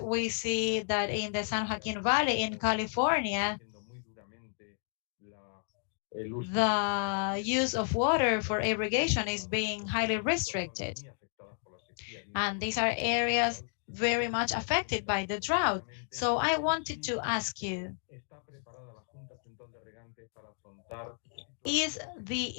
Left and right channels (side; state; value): right; silent; digital silence